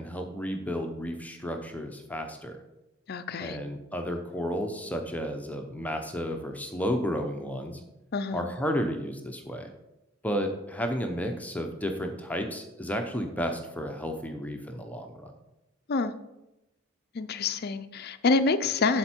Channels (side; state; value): both; normal; correlation 0.47